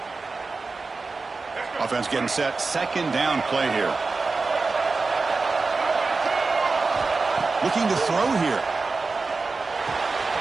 Offense getting set. Second down play here. Looking to throw here.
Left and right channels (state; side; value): quieter; left; 4.0 dB